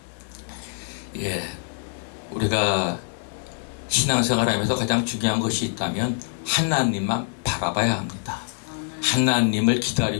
예, 우리가 신앙생활하면서 가장 중요한 것이 있다면 하나님만 바라봐야 합니다. 하나님을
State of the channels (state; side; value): silent; right; digital silence